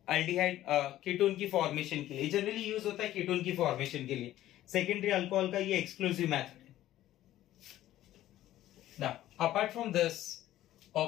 अल्डिहाइड कीटोन की फॉर्मेशन के लिए, जनरली यूज होता है कीटोन की फॉर्मेशन के लिए। सेकेंडरी अल्कोहल का ये एक्सक्लूसिव मेथड है। Now apart from this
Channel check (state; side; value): quieter; right; 13.9 dB